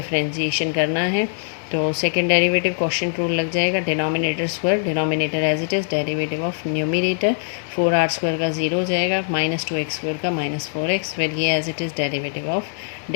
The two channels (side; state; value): right; silent; digital silence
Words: करना है। तो सेकंड डेरिवेटिव क्वेश्चन रूल लग जाएगा, denominator square, denominator as it is, derivative of numerator 4r square का ज़ीरो हो जाएगा, माइनस 2x स्क्वायर का माइनस 4x, फिर ये as it is derivative of